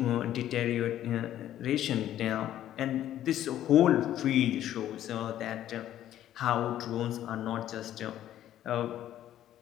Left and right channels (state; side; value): quieter; right; 12.1 dB